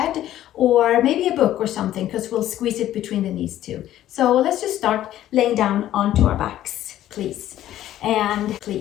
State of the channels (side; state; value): right; quieter; 12.9 dB